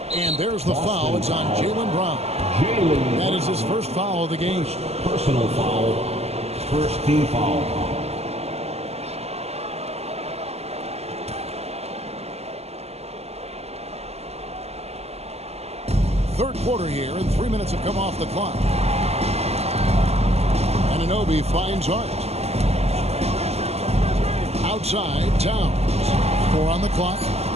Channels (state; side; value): late; left; 0.30 ms